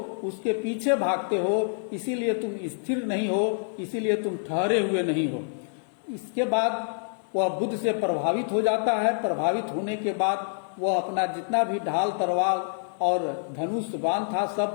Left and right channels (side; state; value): right; silent; digital silence